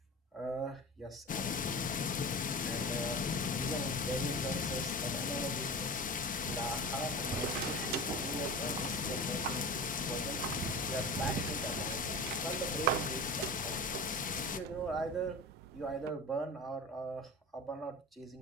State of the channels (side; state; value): both; normal; correlation 0.31